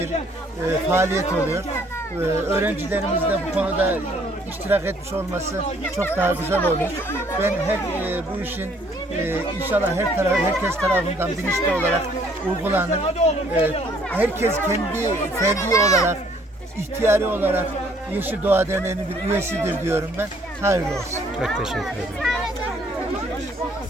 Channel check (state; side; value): normal; both; correlation 0.62